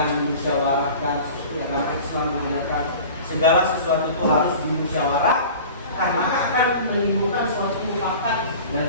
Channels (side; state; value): both; inverted; correlation -0.40